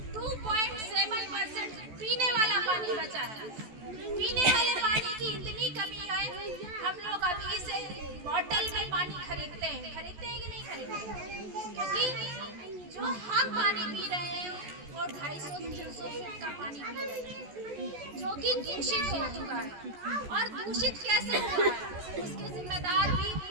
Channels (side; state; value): left; late; 14 ms